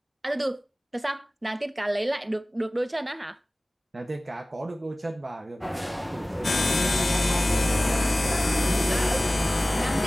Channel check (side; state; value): both; normal; correlation 0.98